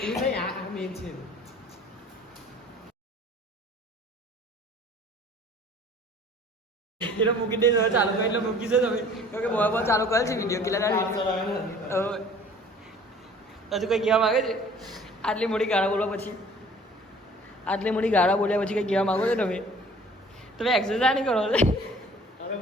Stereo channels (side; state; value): both; normal; correlation 0.50